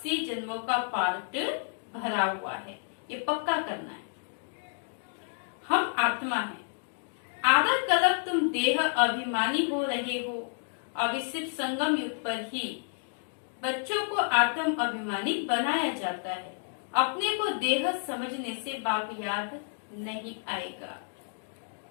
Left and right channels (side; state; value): right; silent; digital silence